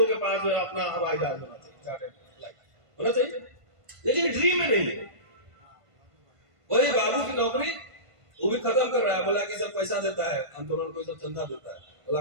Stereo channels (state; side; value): late; left; 1.5 ms